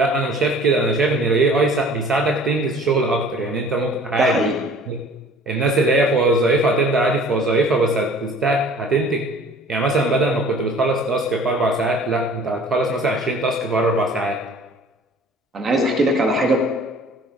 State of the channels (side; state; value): both; normal; correlation 0.49